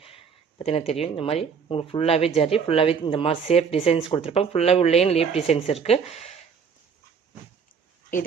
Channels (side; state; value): left; quieter; 6.3 dB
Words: பார்த்தீங்கன்னா தெரியும். இந்த மாதிரி உங்களுக்கு ஃபுல்லாகவே ஜரி, ஃபுல்லாகவே இந்த மாதிரி சேஃப் டிசைன்ஸ் கொடுத்துருப்பாங்க. ஃபுல்லாகவே உள்ளேயும் லீப் டிசைன்ஸ் இருக்குது.